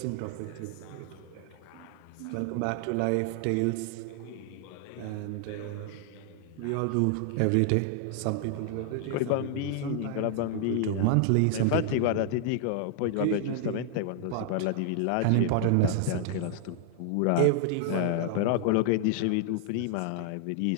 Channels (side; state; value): both; different; correlation 0.00